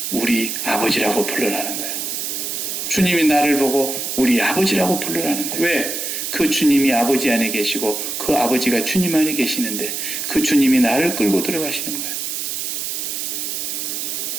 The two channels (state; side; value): noise; right; hiss, 3 dB below the sound